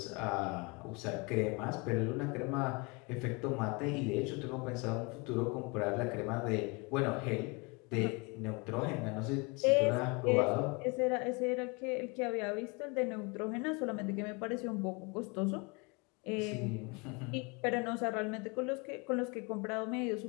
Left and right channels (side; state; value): right; quieter; 29.3 dB